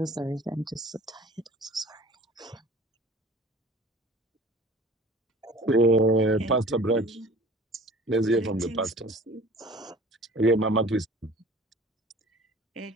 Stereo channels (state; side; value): normal; both; correlation 0.45